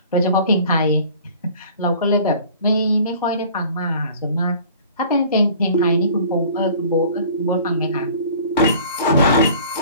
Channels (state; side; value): inverted; both; correlation -0.48